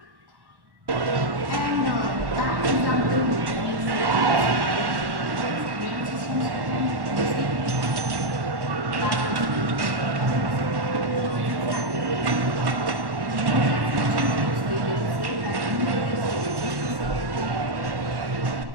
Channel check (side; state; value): left; late; 1.1 ms